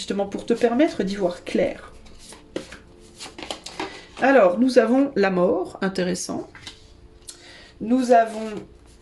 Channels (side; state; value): both; identical; correlation 1.00